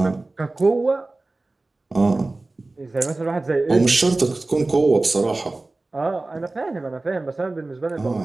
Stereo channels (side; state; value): left; quieter; 3.1 dB